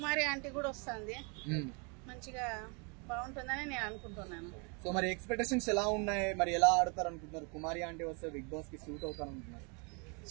ఆంటీ కూడా వస్తుంది, మంచిగా బాగుంటుందని నేను అనుకుంటున్నాను. సో మరి ఎక్స్పెక్టేషన్స్ ఎలా ఉన్నాయి, మరి ఎలా ఆడతారు అనుకుంటున్నారు? కుమారి ఆంటీ వస్తే బిగ్ బాస్ కి సూట్ అవుతారు అనుకుంటున్నారు?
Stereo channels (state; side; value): quieter; left; 33.9 dB